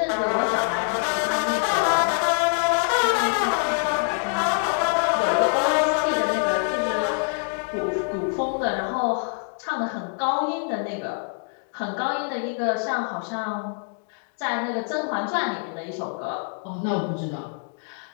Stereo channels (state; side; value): silent; right; 57 dB below the other